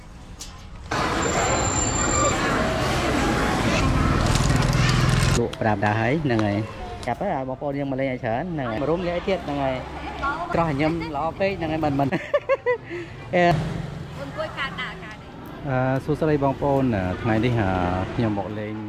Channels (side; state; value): both; identical; correlation 1.00